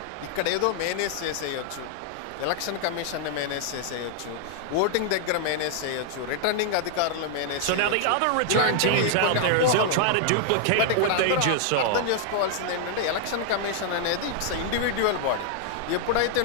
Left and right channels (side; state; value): both; different; correlation -0.01